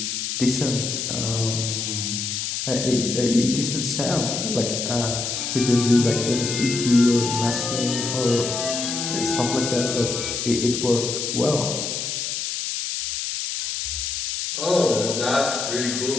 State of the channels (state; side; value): noise; left; hiss, 3 dB below the sound